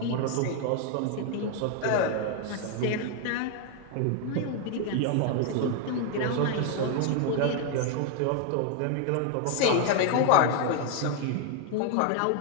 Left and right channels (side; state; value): both; different; correlation 0.01